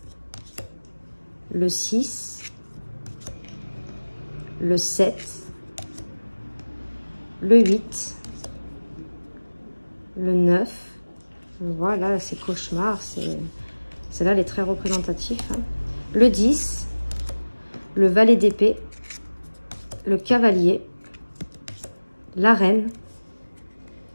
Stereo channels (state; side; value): inverted; both; correlation -1.00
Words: Le 6. Le 7. Le 8. Le 9. Voilà, c'est cauchemar. Celle-là, elle est très représentative. Hein. Le 10. Le valet d'épée. Le cavalier. La reine.